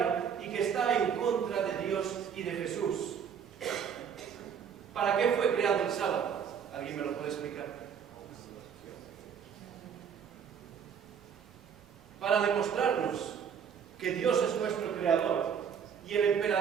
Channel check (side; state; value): left; quieter; 7.5 dB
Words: y que está en contra de Dios y de Jesús. ¿Para qué fue creado el sábado? ¿Alguien me lo puede explicar? Para demostrarnos que Dios es nuestro creador y el